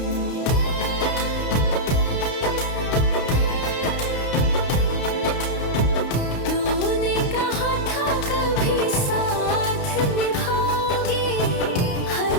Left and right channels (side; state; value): right; late; 31 ms